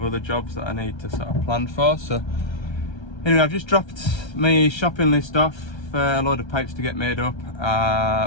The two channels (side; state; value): right; late; 1.3 ms